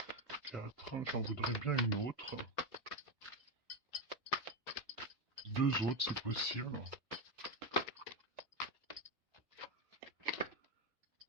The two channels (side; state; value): both; normal; correlation 0.10